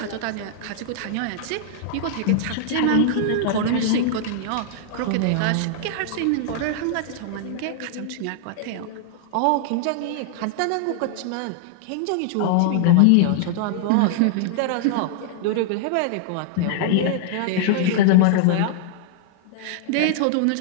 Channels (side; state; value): both; different; correlation -0.01